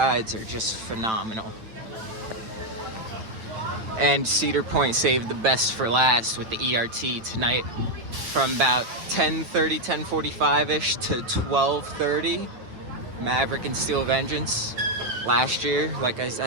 are just phenomenal. And Cedar Point saved the best for last with the ERT tonight. From about 10:30, 10:45-ish to 12:30, Maverick and Steel Vengeance. Last year, like I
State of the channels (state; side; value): late; left; 9.0 ms